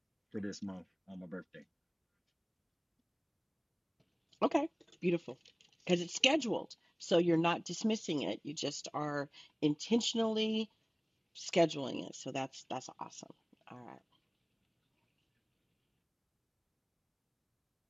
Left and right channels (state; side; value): identical; both; correlation 1.00